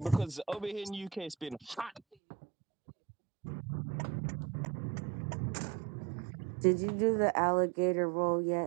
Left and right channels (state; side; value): drops out; left; at 2.1 s